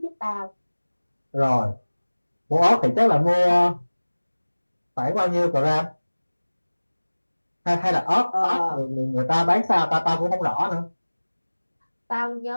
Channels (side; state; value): both; inverted; correlation -1.00